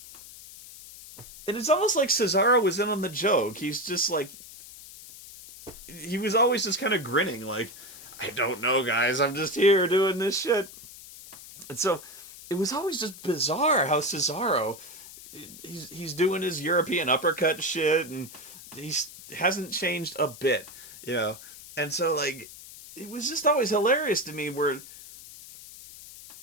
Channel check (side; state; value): left; noise; hiss, 16 dB below the sound